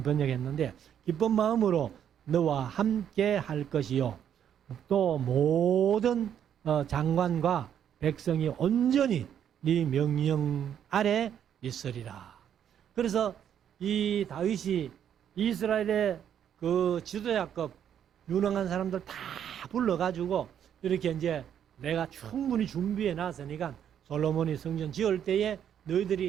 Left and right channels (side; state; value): left; quieter; 9.2 dB